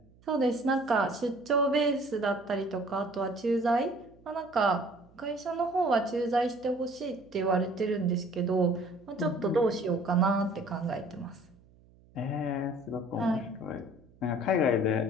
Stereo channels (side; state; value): right; noise; hum, 28 dB below the sound